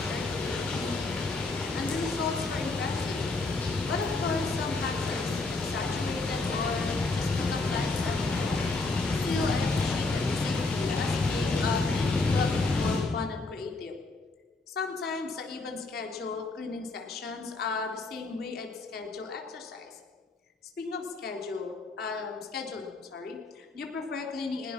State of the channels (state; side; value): quieter; right; 3.5 dB